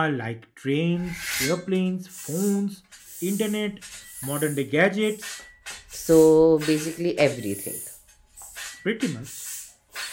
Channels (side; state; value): both; identical; correlation 1.00